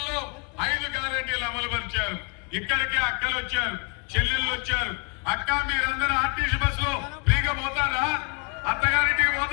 5 గ్యారెంటీలు అమలు పరిచారు. ఇక్కడికి అక్కలు వచ్చారు, చెల్లెళ్ళు వచ్చారు. అక్క మీరందరూ ఆర్టీసీ బస్సులో ఫ్రీగా పోతారా? అత్తగారింటికి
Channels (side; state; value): right; quieter; 33.9 dB